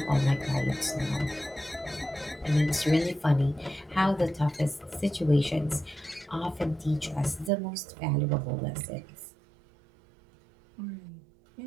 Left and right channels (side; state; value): left; drops out; at 7.5 s